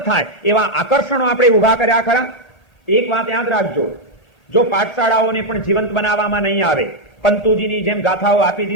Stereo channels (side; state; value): right; late; 1.8 ms